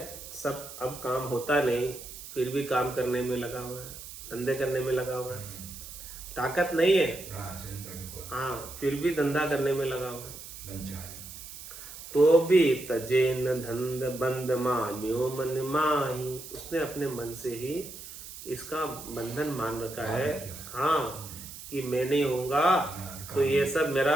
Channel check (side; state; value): right; noise; hiss, 13 dB below the sound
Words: सब अब काम होता नहीं, फिर भी काम करने में लगा हुआ है, धंधे करने में लगा हुआ है। ताकत नहीं है, हाँ, फिर भी धंधा करने में लगा हुआ है। तो भी तजे न धंध बंद मान्यो मन माही। उसने अपने मन से ही इसका बंधन मान रखा है, हाँ, कि मैं नहीं होऊंगा तो ये सब मेरा